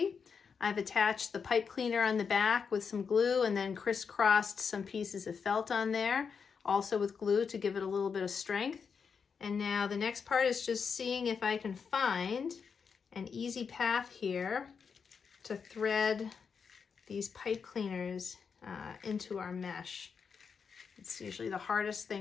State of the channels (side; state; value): right; quieter; 6.0 dB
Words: I've attached the pipe cleaner on the back with some glue and then crisscrossed some pieces of felt on there, also with glue to give it a little bit of strength. And now the next part is just seeing if I can find an easy path here to thread these pipe cleaners into our mesh. It's usually the hardest